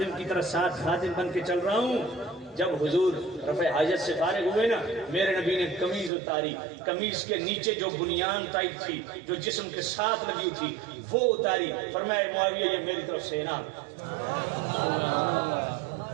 کی طرح ساتھ خادم بن کے چل رہا ہوں. جب حضور رفع حاجت سے فارغ ہوئے نا میرے نبی نے قمیض اتاری، قمیض کے نیچے جو بنیان ٹائپ تھی جو جسم کے ساتھ لگی تھی وہ اتاری. فرمایا معاویہ یہ میری طرف سے انعام.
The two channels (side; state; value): left; drops out; at 6.1 s